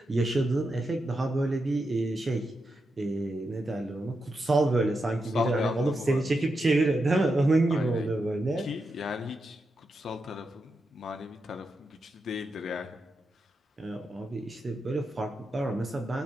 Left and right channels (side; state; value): both; normal; correlation 0.86